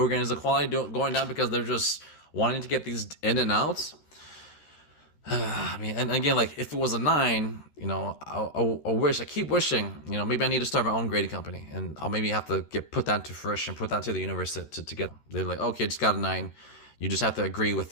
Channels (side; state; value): right; late; 13 ms